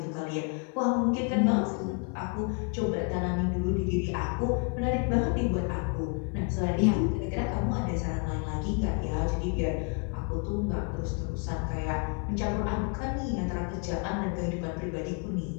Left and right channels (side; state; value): right; quieter; 36.6 dB